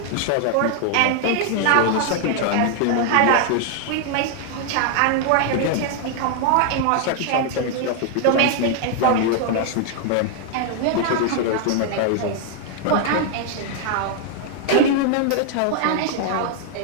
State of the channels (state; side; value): different; both; correlation 0.00